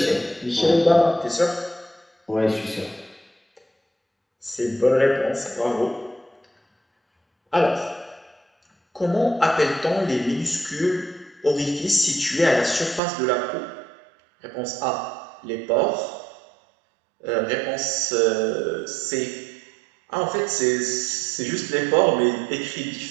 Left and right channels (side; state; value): left; drops out; at 13.0 s